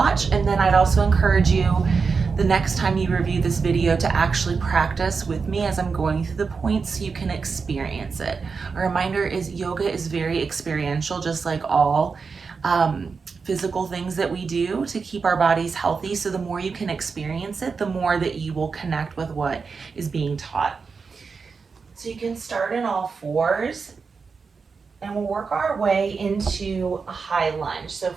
and then I'd also encourage you the next time you review this video to actually practice with me as I'm going through the points so you can experience it. A reminder is yoga is very experiential, just like all physical things that we do to keep our bodies healthy. So the more you can experience it, the more that you will connect with what is being taught. So you can start in all fours, and we'll work our way into a high lunge. So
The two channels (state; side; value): quieter; left; 5.1 dB